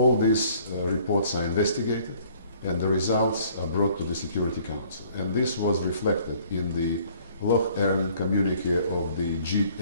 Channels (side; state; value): both; inverted; correlation -0.58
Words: these reports are investigated and the results are brought to the Security Council. And this was reflected in the Loch Ern communique of the